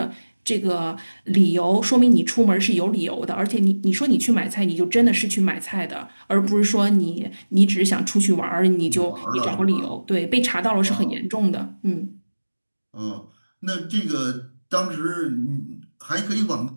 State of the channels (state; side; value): inverted; both; correlation -1.00